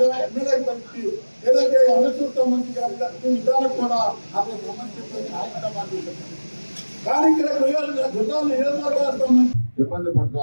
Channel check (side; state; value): both; inverted; correlation -1.00